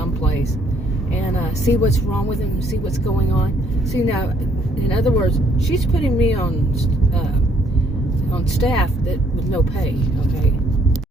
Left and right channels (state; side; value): normal; both; correlation 0.66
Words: and see what's wrong with them, see what's going on. See, now, in other words, she's putting me on staff with no pay, okay?